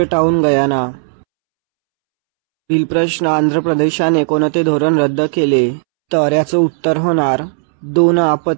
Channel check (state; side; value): silent; left; 71 dB below the other